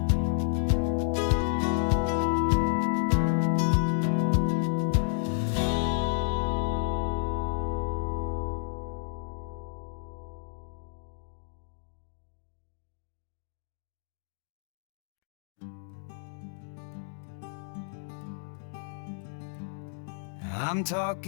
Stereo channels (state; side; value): silent; right; digital silence